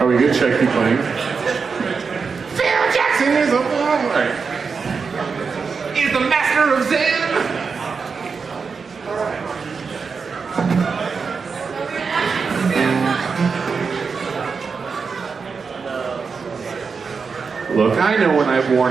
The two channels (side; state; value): left; quieter; 5.3 dB